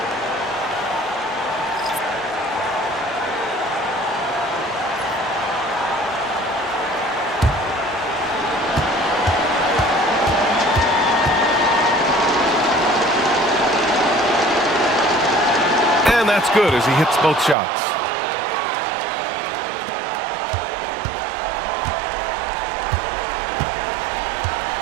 And that's good as he hits both shots.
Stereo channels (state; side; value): drops out; left; at 17.6 s